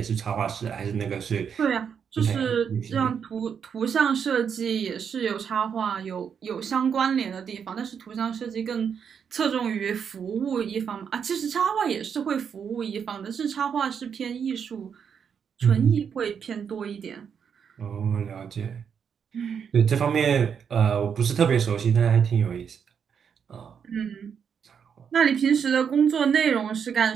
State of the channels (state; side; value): quieter; left; 7.2 dB